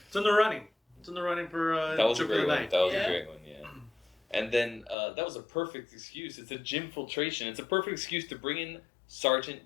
in the running. It's in the running for That was a Joke of great the one. Night. That was Yeah. a great one, yeah. And then that was a perfect excuse. It's a gymfiltration. It's a perfect excuse to bring in Sergeant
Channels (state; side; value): drops out; right; at 5.0 s